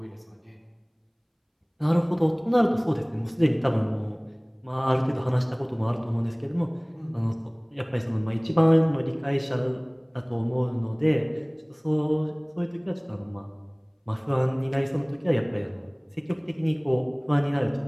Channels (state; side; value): identical; both; correlation 1.00